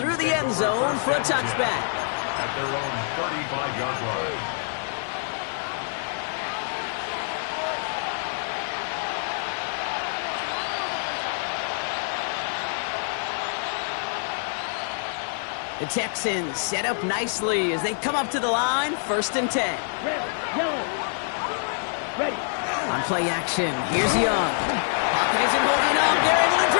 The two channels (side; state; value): right; silent; 56 dB below the other